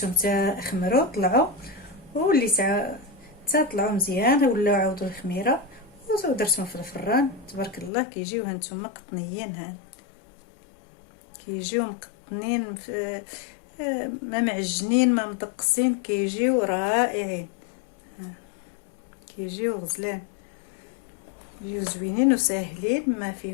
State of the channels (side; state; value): right; drops out; at 7.9 s